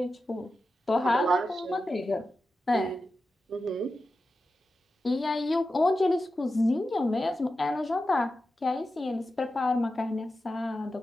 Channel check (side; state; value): both; normal; correlation 0.91